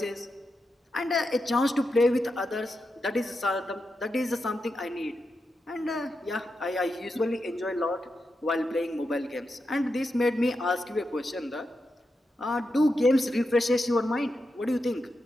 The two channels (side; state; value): both; normal; correlation 0.87